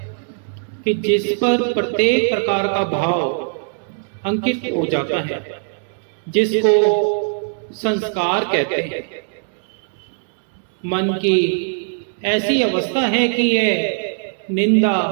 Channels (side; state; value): left; silent; digital silence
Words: कि जिस पर प्रत्येक प्रकार का भाव अंकित हो जाता है, जिसको संस्कार कहते हैं। मन की ऐसी अवस्था है कि यह निंदा,